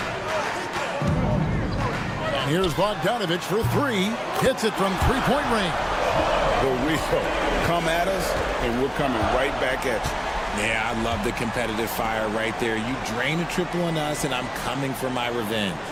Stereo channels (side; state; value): both; identical; correlation 1.00